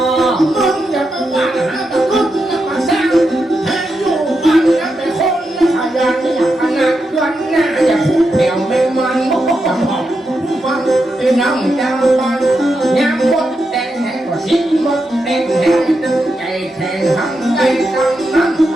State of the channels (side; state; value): both; normal; correlation 0.86